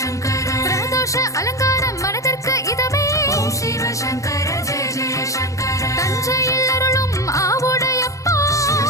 சங்கர பிரதோஷ அலங்காரம் மனதிற்கு இதமே ஓம் சிவ சங்கர ஜெய ஜெய சங்கர தஞ்சையில் அருளும் ஆவுடையப்பா சிவ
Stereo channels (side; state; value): right; late; 0.15 ms